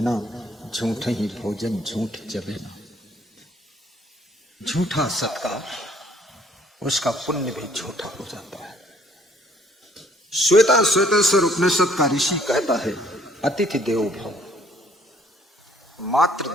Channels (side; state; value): both; normal; correlation 0.62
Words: झूठ ही भोजन झूठ जबेना। झूठा सत्कार, उसका पुण्य भी झूठा हो जाता है। श्वेतेश्वर उपनिषद का ऋषि कहता है, अतिथि देवो भव, मातृ